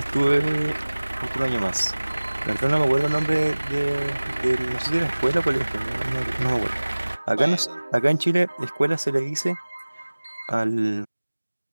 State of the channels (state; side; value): inverted; both; correlation -1.00